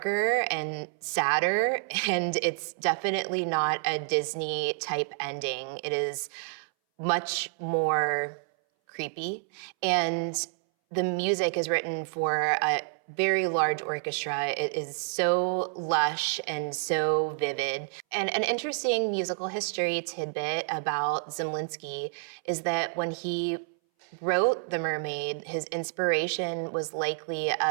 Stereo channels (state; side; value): silent; left; 59 dB below the other